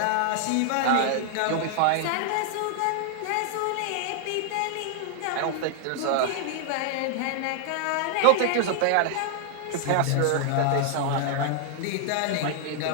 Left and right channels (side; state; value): both; different; correlation 0.00